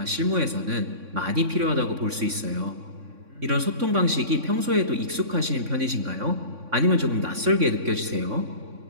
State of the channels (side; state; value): left; late; 3.6 ms